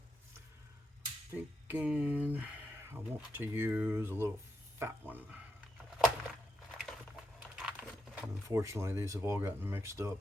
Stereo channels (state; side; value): normal; both; correlation 0.83